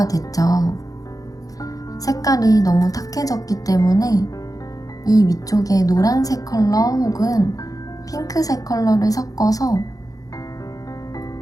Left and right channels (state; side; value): late; right; 0.17 ms